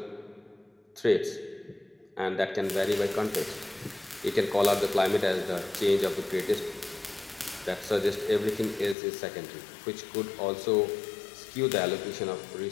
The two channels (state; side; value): drops out; right; at 9.0 s